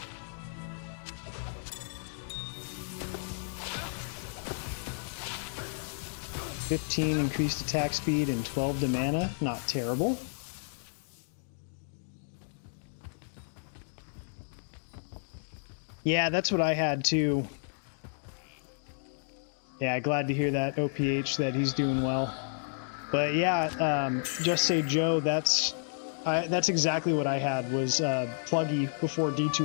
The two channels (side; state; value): right; silent; digital silence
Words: $15 increased attack speed and 12 to mana. Not terrible. Yeah, that's what I had too. Yeah, glad to hear that, OPH, that he's doing well. But yeah, Just Say Joe, that's exactly what I had, was Pluggy before